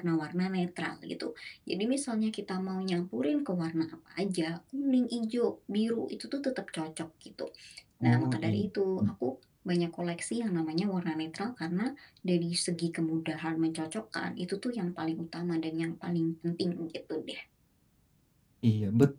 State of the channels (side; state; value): both; identical; correlation 1.00